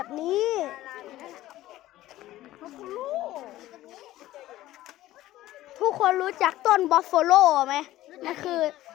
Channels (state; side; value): quieter; right; 15.3 dB